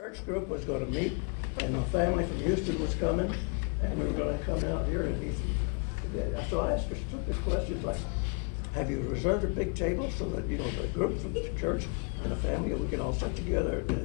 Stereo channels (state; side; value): quieter; right; 35.2 dB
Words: church group was gonna meet, and my family from Houston was coming, and we were gonna come out here and eat. So I asked her stupid questions like, have you reserved a big table so that, you know, the group from the church and the family, we can all sit together